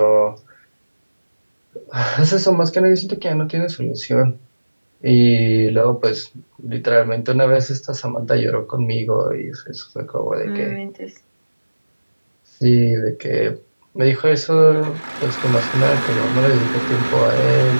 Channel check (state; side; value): inverted; both; correlation -1.00